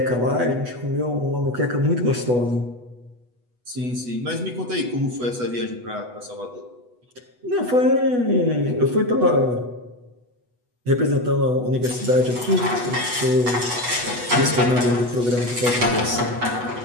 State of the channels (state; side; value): late; left; 8.1 ms